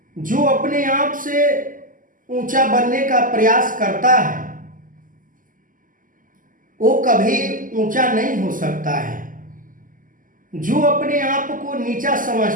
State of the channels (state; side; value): late; left; 0.39 ms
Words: जो अपने आप से ऊंचा बनने का प्रयास करता है वो कभी ऊंचा नहीं हो सकता है। जो अपने आप को नीचा